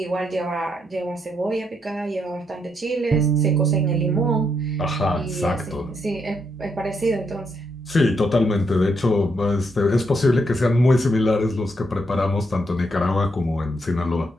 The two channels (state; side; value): normal; both; correlation 0.77